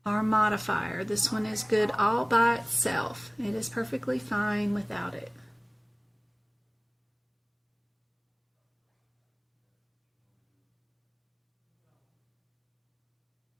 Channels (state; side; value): identical; both; correlation 1.00